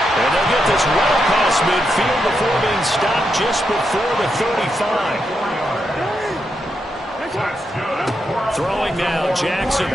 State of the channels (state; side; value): normal; both; correlation 0.83